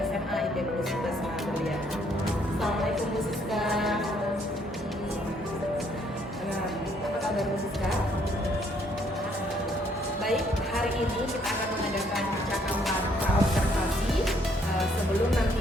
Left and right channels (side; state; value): both; normal; correlation 0.67